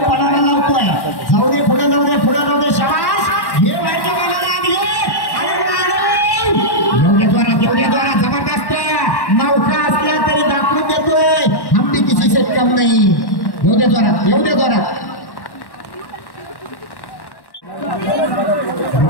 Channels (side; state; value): right; late; 1.1 ms